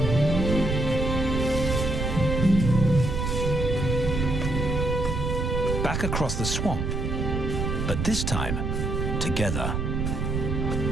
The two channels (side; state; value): right; noise; rumble, 1 dB below the sound